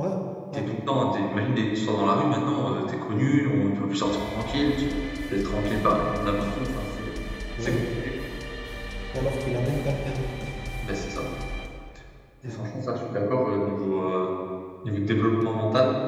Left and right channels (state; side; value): identical; both; correlation 1.00